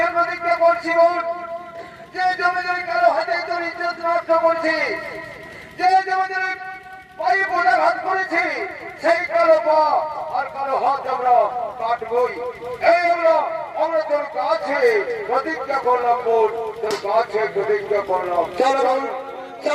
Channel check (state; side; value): identical; both; correlation 1.00